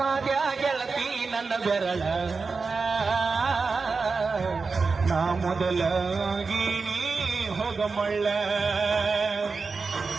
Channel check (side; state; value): left; quieter; 4.5 dB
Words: ಗೆಳತಿ ನನ್ನ ಬೆರಳ ನಾ ಮೊದಲಾಗಿನಿ ಹೋಗಮಳ್ಳ